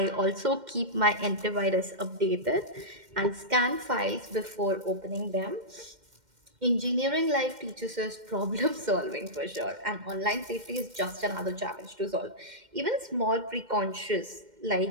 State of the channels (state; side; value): late; left; 2.1 ms